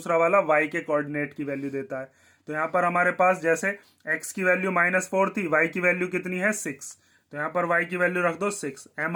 वाला y के कोऑर्डिनेट की वैल्यू देता है। तो यहाँ पर हमारे पास जैसे x की वैल्यू -4 थी, y की वैल्यू कितनी है 6, तो यहाँ पर y की वैल्यू रख दो 6, m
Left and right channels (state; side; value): identical; both; correlation 1.00